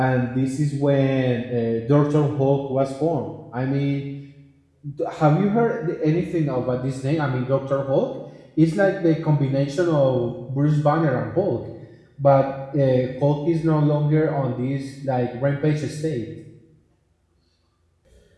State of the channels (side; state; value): both; identical; correlation 1.00